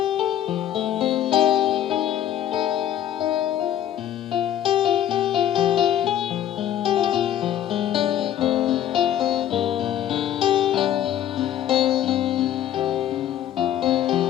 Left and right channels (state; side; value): quieter; right; 11.1 dB